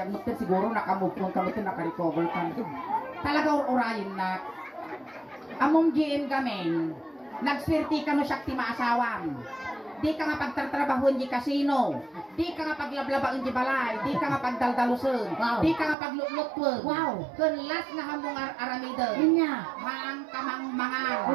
mo tin siguro nakamove on ka mo tin naka-recover ka. Talaga urayin na. Among GM kami, nagswerte ka no siya ti maasawam. Di ka nga pagtatrabahon di casino. Di ka nga paglablabaan di balay. Di ka nga pagdaldalusun. Wow. Di ka nga paglutlutwon. Wow. Kun last nga hamong aramidon. Inya. Maang kamang mangan.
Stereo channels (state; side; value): drops out; left; at 16.0 s